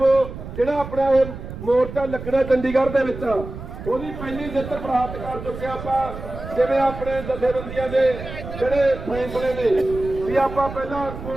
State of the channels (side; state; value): right; noise; rumble, 10 dB below the sound